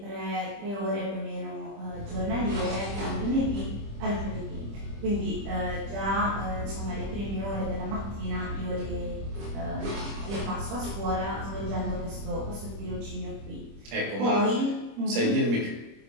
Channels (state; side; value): late; left; 25 ms